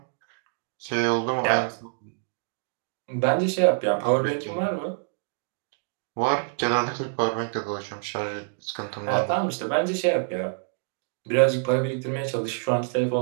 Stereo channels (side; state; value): left; silent; digital silence